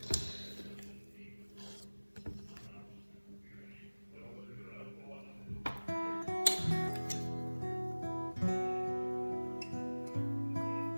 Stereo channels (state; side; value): inverted; both; correlation -1.00